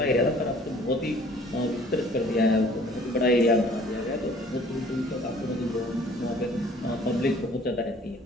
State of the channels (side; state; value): both; normal; correlation 0.54